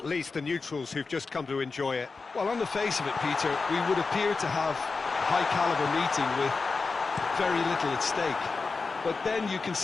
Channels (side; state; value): right; quieter; 4.3 dB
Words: least the neutrals who've just come to enjoy it. Well, on the face of it, Peter, we would appear to have a high-caliber meeting with very little at stake. But then you